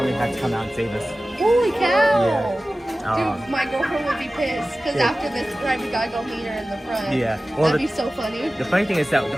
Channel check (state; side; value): normal; both; correlation 0.96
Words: had to come out and save us. Holy cow! Yeah. Dude, my girlfriend would be pissed because after this ride, we gotta go meet her in the front. Yeah. Well, that'd be so funny. The funny thing is that